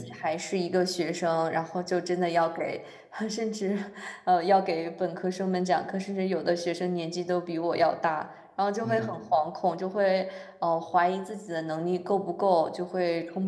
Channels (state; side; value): identical; both; correlation 1.00